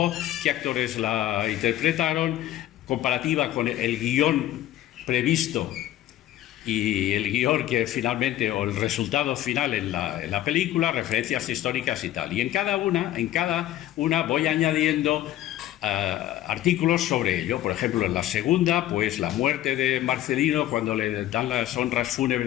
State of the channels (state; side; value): quieter; right; 13.5 dB